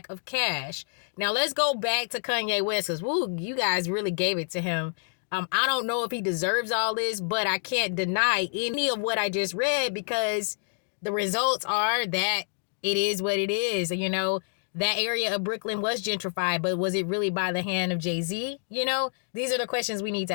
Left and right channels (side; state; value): right; silent; digital silence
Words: of cash. Now, let's go back to Kanye West, because, you guys really gave it to him. I don't know if he deserves all this, but I can't deny any of what I just read because the results are that it is what it is. You know, that area of Brooklyn was gentrified, but was it really by the hand of Jay-Z? You know, these are the questions we need to